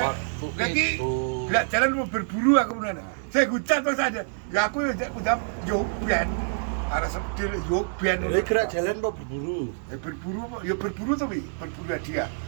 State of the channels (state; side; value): silent; left; digital silence